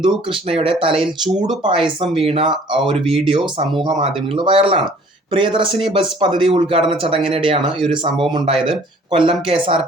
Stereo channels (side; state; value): both; normal; correlation 0.54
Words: കൃഷ്ണയുടെ തലയിൽ ചൂട് പായസം വീണ ഒരു വീഡിയോ സമൂഹ മാധ്യമങ്ങളിൽ വൈറലാണ്. പ്രിയദർശിനി ബസ് പദ്ധതി ഉദ്ഘാടന ചടങ്ങിനിടെയാണ് ഈ ഒരു സംഭവം ഉണ്ടായത്. കൊല്ലം